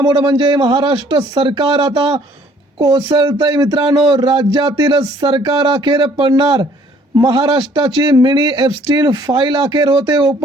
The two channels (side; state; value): both; normal; correlation 0.59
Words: म्हणजे महाराष्ट्र सरकार आता कोसळतंय। मित्रांनो, राज्यातील सरकार अखेर पडणार। महाराष्ट्राची मिनी एप्स्टीन फाईल अखेर होते